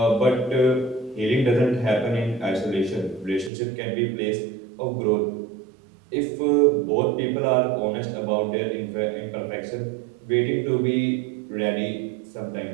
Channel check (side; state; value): left; drops out; at 3.5 s